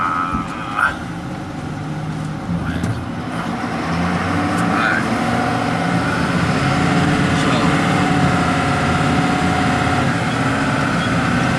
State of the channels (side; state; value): both; identical; correlation 1.00